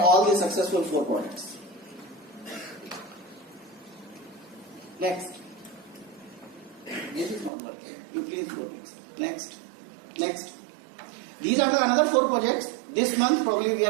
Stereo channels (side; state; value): left; drops out; at 7.5 s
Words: the successful 4 projects. Next. This is not working. You please go next. Next. Next. These are the another 4 projects. This month probably we